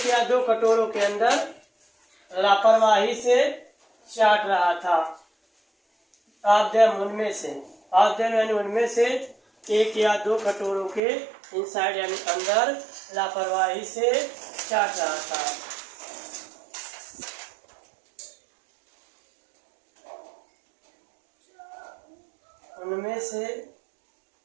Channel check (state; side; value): drops out; left; at 11.0 s